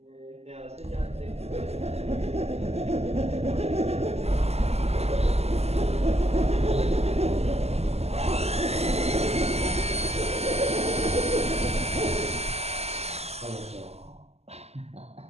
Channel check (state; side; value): late; left; 0.30 ms